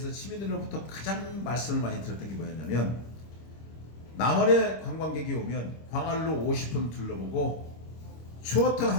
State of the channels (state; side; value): late; right; 25 ms